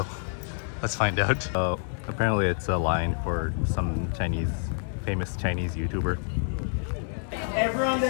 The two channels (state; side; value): silent; right; 60 dB below the other